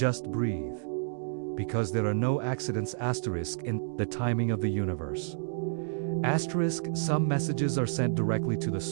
breathe. Because there are no accidents asterisk in the timing of the universe. Asterisk, some messages are sent directly to the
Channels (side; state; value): left; silent; digital silence